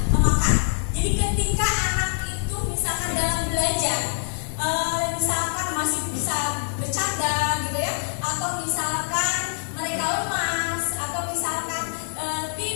makan. Jadi ketika anak itu misalkan dalam belajar, misalkan masih bisa bercanda gitu ya, atau misalkan mereka lemas, atau misalkan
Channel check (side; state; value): right; silent; 61 dB below the other